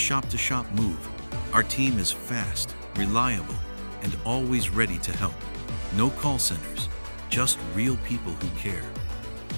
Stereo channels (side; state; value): both; inverted; correlation -1.00